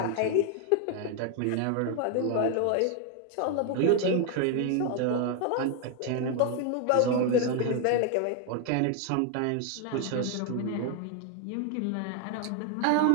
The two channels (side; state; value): both; different; correlation 0.01